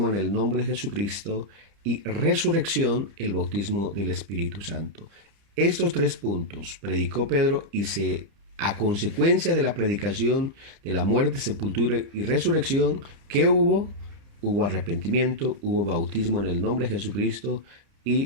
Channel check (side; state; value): left; late; 30 ms